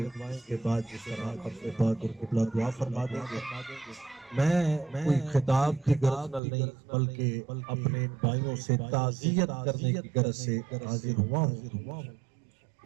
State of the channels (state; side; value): drops out; left; at 6.4 s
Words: کے بعد جس طرح اپنے پاک اور قبلہ دعا فرما دیں گے میں کوئی خطاب کی غرض نہیں بلکہ اپنے بھائیوں سے تعزیت کرنے کی غرض سے حاضر ہوا ہوں